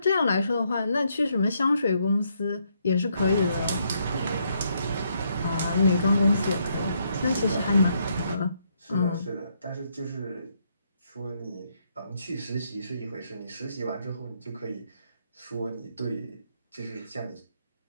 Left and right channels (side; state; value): both; inverted; correlation -0.74